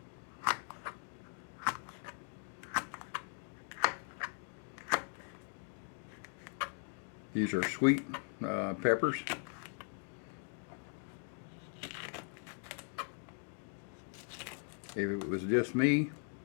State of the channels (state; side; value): silent; right; 51 dB below the other